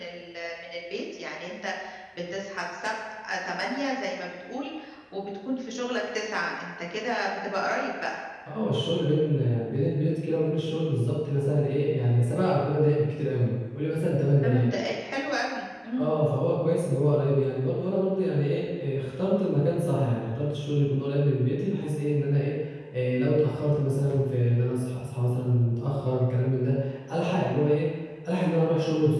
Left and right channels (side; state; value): both; identical; correlation 1.00